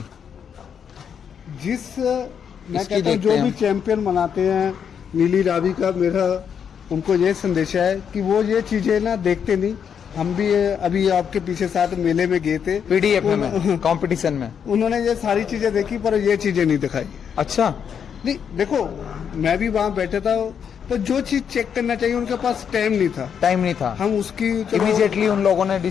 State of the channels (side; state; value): right; quieter; 7.6 dB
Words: जिस मैं इसकी कहता हूँ देखते जो हैं भी हम। चैंपियन मनाते हैं नीली रावी का, मेरा उनको ये संदेश है कि वो ये चीजें ना देखते नहीं। हम भी अभी आपके पीछे साथ मेले में गए थे, पीडीएफ में, कंपटीशन में। उन्होंने ये सारी चीजें देखी पर ये चीजें नहीं दिखाई। अच्छा, नहीं देखो, मैं भी वहां बैठा था, पर जो चीज चेक करना चाहिए उनके पास टाइम नहीं था। टाइम नहीं था। हम उसकी इमीडिएटली उन लोगों ने